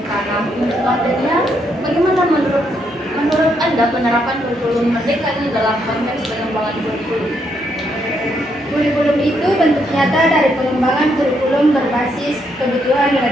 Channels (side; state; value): both; normal; correlation 0.76